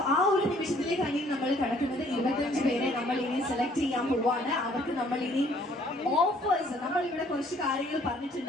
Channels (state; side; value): normal; both; correlation 0.60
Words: ആ ഒരു നിമിഷത്തിലേക്കാണ് ഇനി നമ്മൾ കിടക്കുന്നത്. 25 പേരെ നമ്മൾ ഇനി സെലക്ട് ചെയ്യാൻ പോവാണ്. അവർക്ക് നമ്മൾ ഇനി ഓഫേഴ്സ്, നമ്മൾ ഇവിടെ കുറച്ച് കാര്യങ്ങൾ